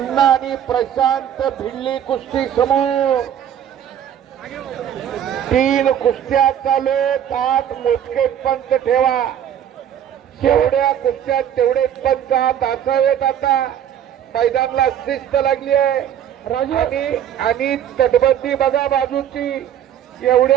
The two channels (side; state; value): left; quieter; 9.9 dB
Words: आणि प्रशांत भिडली कुस्ती समूह. 3 कुस्त्या चालू, 8 मोजके पंच ठेवा. जेवढ्या कुस्त्या तेवढे पंच हात असावेत. आता मैदानाला शिस्त लागली आहे आणि तटबंदी बघा बाजूची.